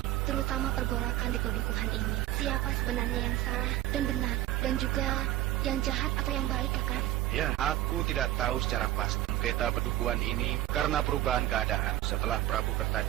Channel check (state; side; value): quieter; left; 14.8 dB